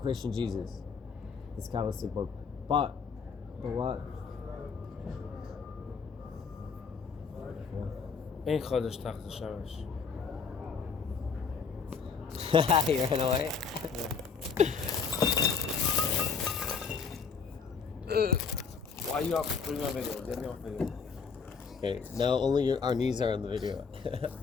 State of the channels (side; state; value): right; quieter; 5.6 dB